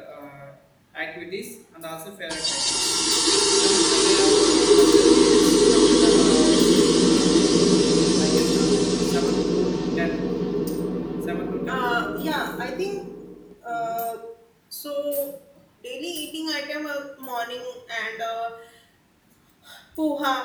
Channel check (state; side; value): identical; both; correlation 1.00